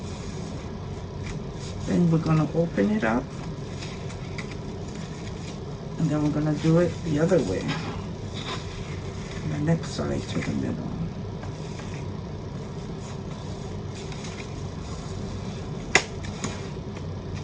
Then we're gonna open it up, and then we're gonna do it the other way. The next side to the middle.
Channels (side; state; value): both; identical; correlation 1.00